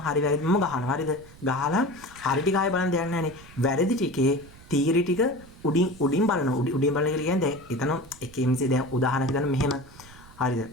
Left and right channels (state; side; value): noise; right; rumble, 21 dB below the sound